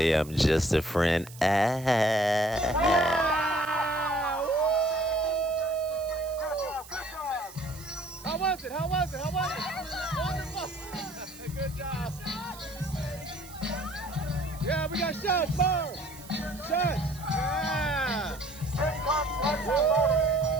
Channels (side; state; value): right; noise; hiss, 18 dB below the sound